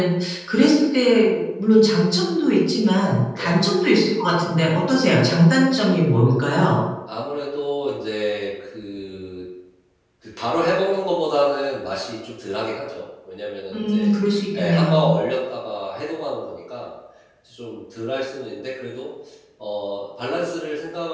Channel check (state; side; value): identical; both; correlation 1.00